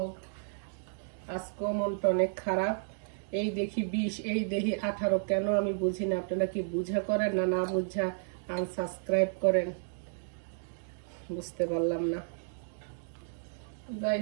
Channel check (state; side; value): silent; left; digital silence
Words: আজকেও মনটা অনেক খারাপ। এই দেখি 20, এই দেখি 18, কেন আমি বুঝি না। আপনারা কি বুঝা করেন না বুঝা আনসাবস্ক্রাইব করেন? বুঝতে পারলাম না। যাই